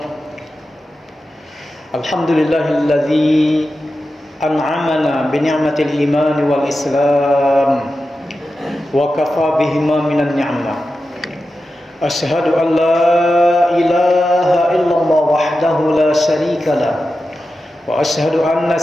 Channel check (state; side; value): normal; both; correlation 0.92